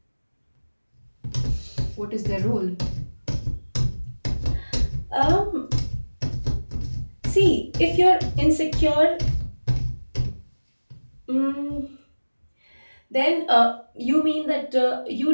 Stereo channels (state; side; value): inverted; both; correlation -1.00